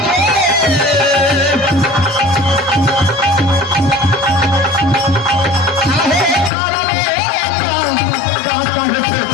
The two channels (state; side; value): drops out; right; at 6.5 s